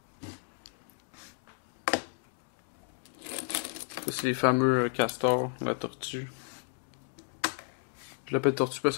Ça, c'est les fameux castors, la tortue. Je l'appelle tortue parce que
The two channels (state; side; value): silent; right; 56 dB below the other